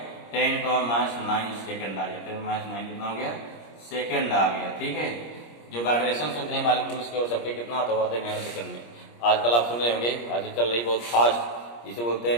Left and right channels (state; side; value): late; right; 25 ms